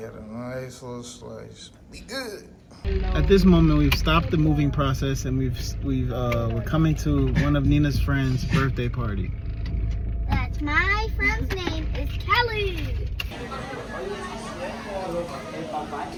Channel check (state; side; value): identical; both; correlation 1.00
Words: a nice little slice. Be good. At this moment, we've stopped the moving process, and we're coming to one of Nina's friends' birthday party. That's my friend's name is Kelly.